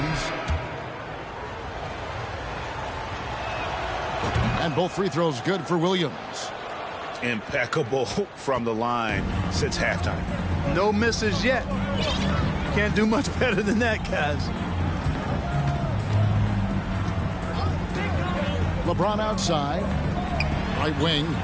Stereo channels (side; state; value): both; identical; correlation 1.00